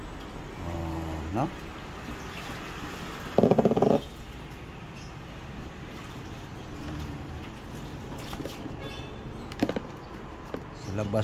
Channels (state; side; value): identical; both; correlation 1.00